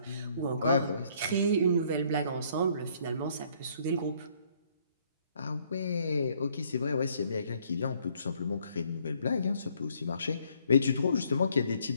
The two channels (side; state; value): both; inverted; correlation -0.65